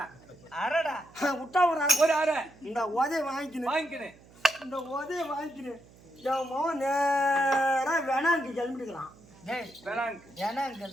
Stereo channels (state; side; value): noise; right; hum, 25 dB below the sound